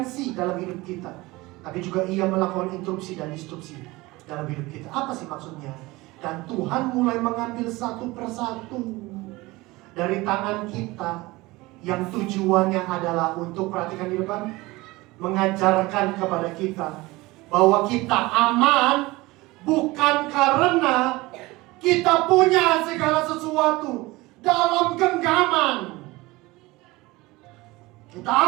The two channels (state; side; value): quieter; left; 21.1 dB